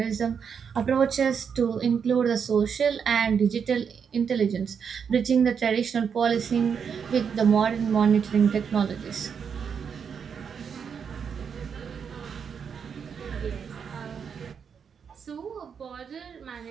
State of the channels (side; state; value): left; quieter; 6.8 dB